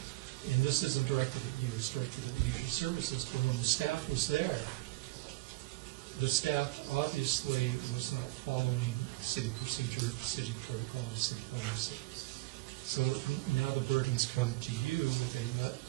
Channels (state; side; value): quieter; left; 20.9 dB